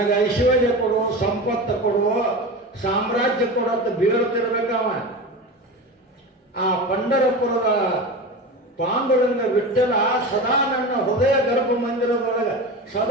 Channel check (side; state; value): both; normal; correlation 0.27